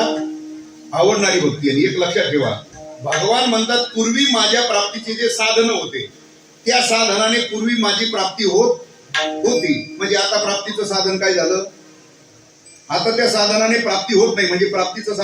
आवडणारी भक्ती. आणि एक लक्षात ठेवा भगवान म्हणतात पूर्वी माझ्या प्राप्तीचे जे साधन होते त्या साधनाने पूर्वी माझी प्राप्ती होती. म्हणजे आता प्राप्तीचं साधन काय झालं. आता त्या साधनाने प्राप्ती होत नाही म्हणजे प्राप्तीचं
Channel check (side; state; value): both; identical; correlation 1.00